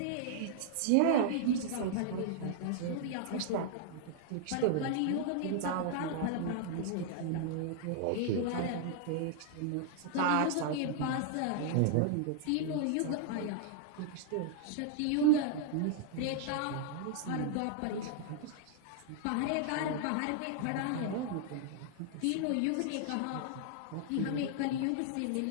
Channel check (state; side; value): different; both; correlation -0.01